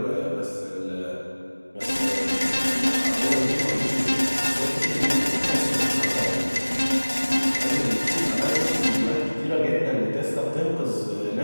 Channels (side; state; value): both; inverted; correlation -1.00